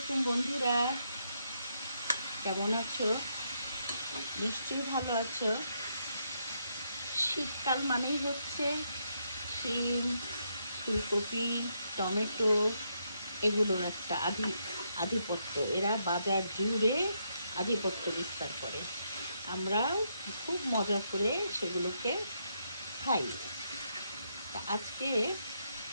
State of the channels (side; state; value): both; inverted; correlation -0.78